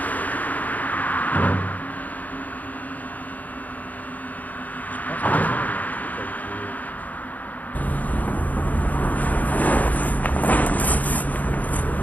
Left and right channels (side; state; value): right; late; 0.077 ms